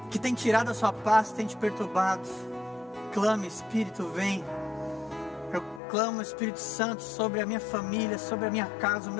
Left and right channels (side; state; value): right; drops out; at 5.8 s